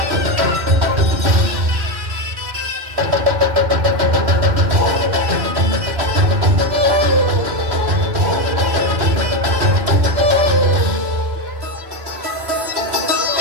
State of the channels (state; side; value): late; left; 3.1 ms